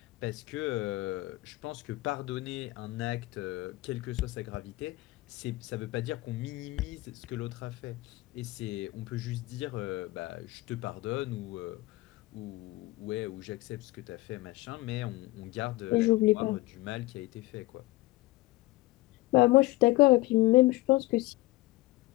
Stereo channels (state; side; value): quieter; right; 19.6 dB